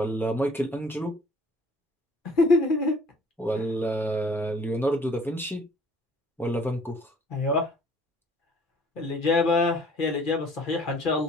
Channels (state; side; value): normal; both; correlation 0.55